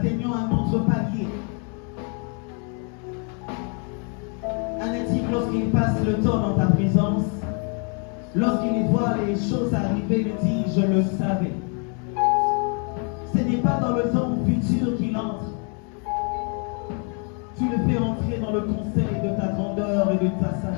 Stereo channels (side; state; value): right; quieter; 39.0 dB